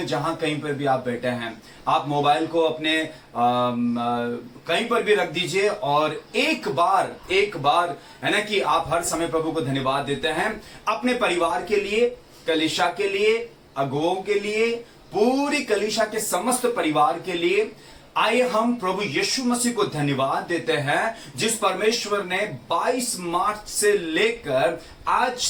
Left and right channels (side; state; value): both; identical; correlation 1.00